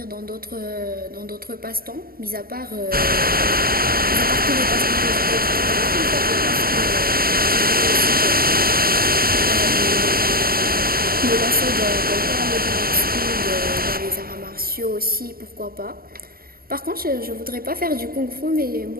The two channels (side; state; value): left; late; 0.43 ms